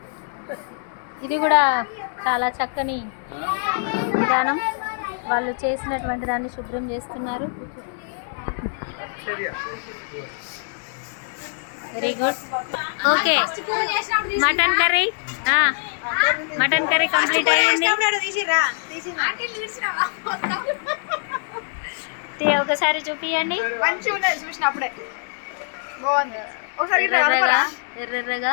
ఇది కూడా చాలా చక్కని విధానం. వాళ్ళు చేసినటువంటి దాన్ని శుభ్రం చేస్తున్నారు. Very good. Okay, mutton curry complete అయ్యింది. ఒకసారి చూపియండి. ఎర్రగా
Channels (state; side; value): silent; right; digital silence